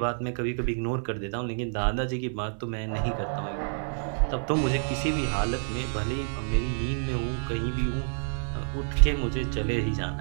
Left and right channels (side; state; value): left; silent; digital silence